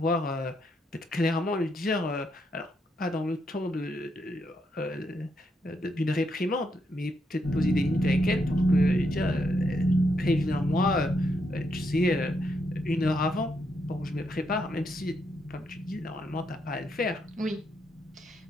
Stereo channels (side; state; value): both; normal; correlation 0.79